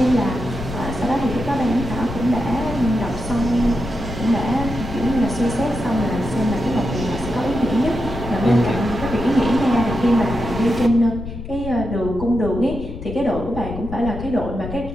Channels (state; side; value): noise; left; rumble, 9 dB below the sound